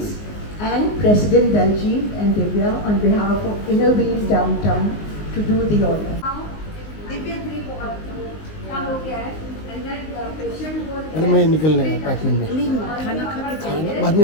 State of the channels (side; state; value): right; late; 19 ms